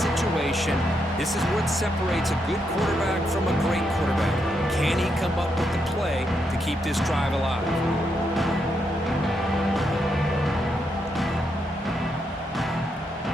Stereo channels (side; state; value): both; normal; correlation 0.80